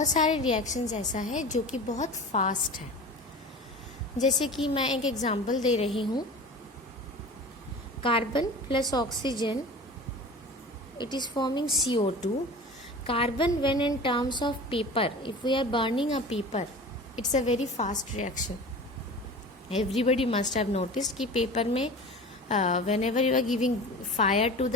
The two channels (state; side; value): normal; both; correlation 0.37